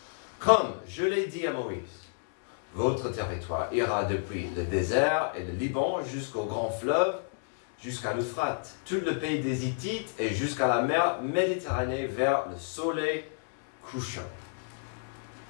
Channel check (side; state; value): right; silent; digital silence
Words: Comme je l'ai dit à Moïse, votre territoire ira depuis le désert et le Liban jusqu'au grand fleuve, jusqu'à l'Euphrate, tout le pays des Hittites et jusqu'à la mer Méditerranée vers le soleil couchant.